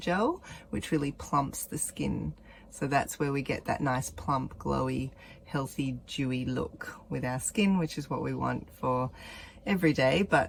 which really plumps the skin. So that's where we get that nice plump, glowy, healthy, dewy look with our skin, which is what we want for every day,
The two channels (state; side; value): identical; both; correlation 1.00